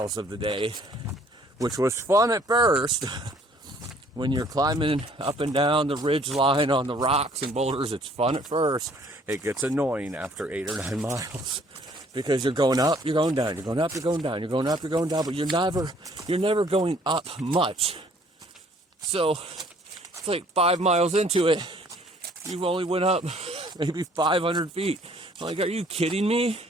of the day, which was fun at first. When you're climbing up and down the ridge line on the rocks and boulders, it's fun at first. It gets annoying after 8 or 9 miles because you're going up, you're going down, you're going up, you're going down, you're going up, you're going down, but you're never going up much. So it's like 5 miles into it, you've only went up maybe 500 feet. I'm like, are you kidding me?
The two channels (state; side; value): normal; both; correlation 0.59